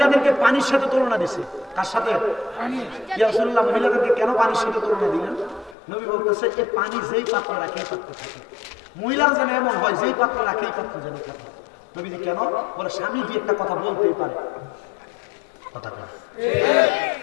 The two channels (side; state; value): right; drops out; at 5.8 s